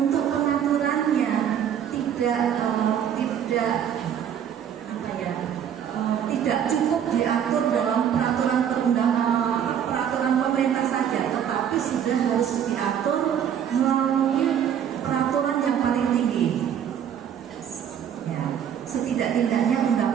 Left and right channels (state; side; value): quieter; left; 8.9 dB